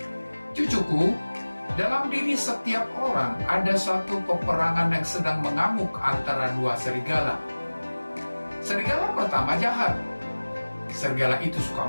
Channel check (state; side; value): inverted; both; correlation -1.00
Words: "Cucuku, dalam diri setiap orang ada suatu peperangan yang sedang mengamuk antara dua serigala. Serigala pertama jahat. Serigala itu